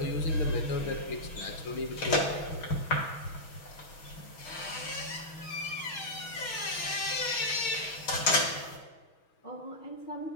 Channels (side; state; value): right; late; 6.2 ms